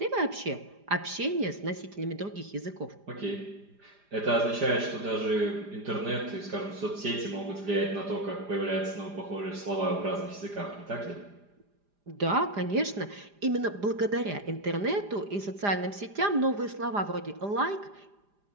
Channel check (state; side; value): late; left; 4.9 ms